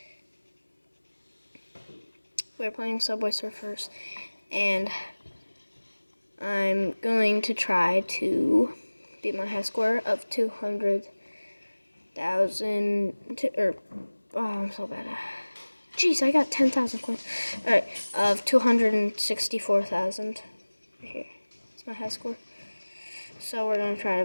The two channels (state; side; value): inverted; both; correlation -1.00